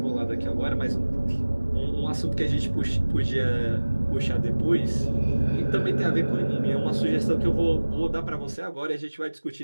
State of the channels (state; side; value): inverted; both; correlation -1.00